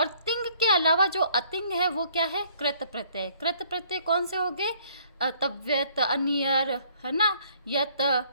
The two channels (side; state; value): both; inverted; correlation -0.61